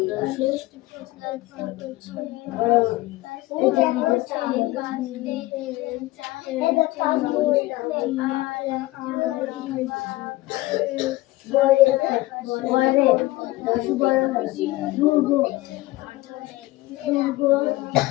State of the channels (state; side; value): quieter; right; 18.9 dB